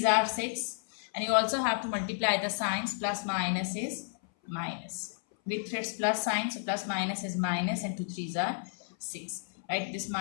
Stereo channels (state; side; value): silent; right; 57 dB below the other